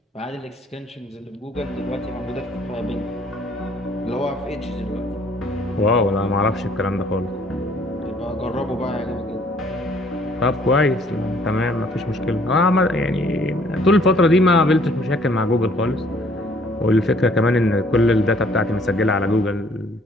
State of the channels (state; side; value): normal; both; correlation 0.60